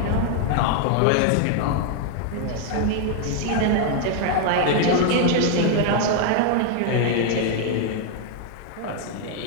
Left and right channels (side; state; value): both; different; correlation 0.00